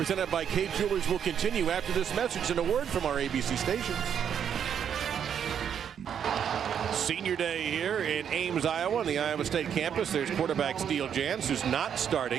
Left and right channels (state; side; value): quieter; left; 8.4 dB